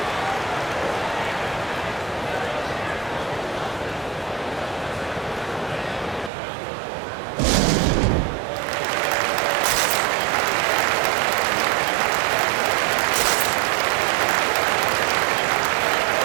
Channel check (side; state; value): left; drops out; at 6.3 s